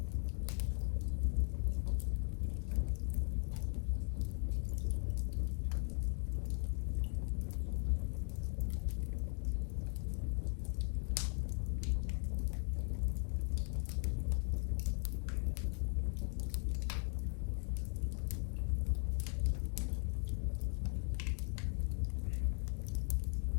ascensores, señales de coches, ni pasos de vecinos. Encendió la radio, pero solo se oía un silbido, como si estuviera atrapado en un bucle. En la cocina, sobre la mesa, había un cuaderno abierto por una página nueva. La última anotación, escrita con letras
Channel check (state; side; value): quieter; right; 39.2 dB